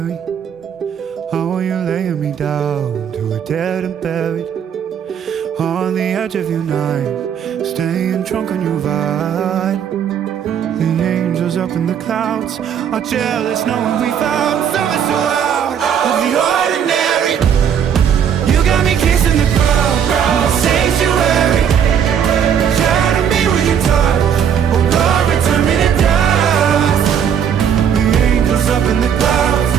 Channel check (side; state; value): left; quieter; 8.3 dB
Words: How are you laying me down to a dead and buried on the edge of your night, staying drunk on your vine. The angels up in the clouds are jealous knowing we found something so out of the ordinary. You got me kissing the ground in the sanctuary.